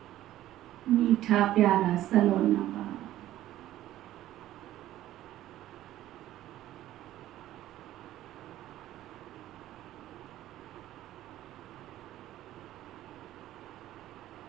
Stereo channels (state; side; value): quieter; left; 13.9 dB